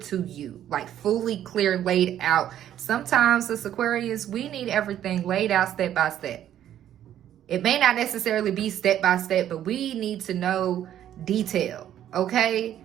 you, like fully clear, laid out. Sometimes as Aquarius, we need everything laid out step by step. It may not necessarily be step by step, but we need to know detail. Okay?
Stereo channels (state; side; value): quieter; left; 11.1 dB